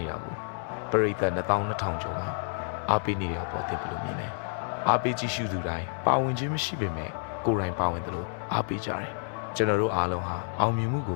ေတာကိုပရိသတ်22,000ကျော်ကအားပေးနေတဲ့အပေါ်သိဘယ်လိုမြင်လဲအားပေးကြည့်ရှုသူတိုင်းပါဝင်ခြင်းမရှိပေမဲ့ကိုယ်တိုင်ပါဝင်တယ်လို့အားပေးကြတယ်ကျွန်တော်တို့အားလုံးဟာအောင်မြင်မှုကိ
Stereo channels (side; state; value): right; silent; 58 dB below the other